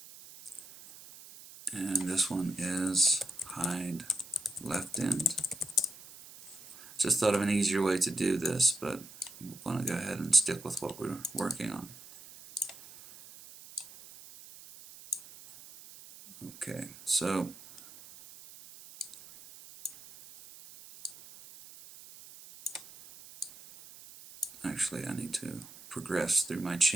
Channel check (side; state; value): right; noise; hiss, 18 dB below the sound